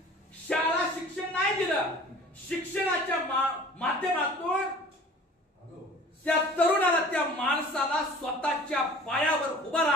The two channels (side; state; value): both; normal; correlation 0.46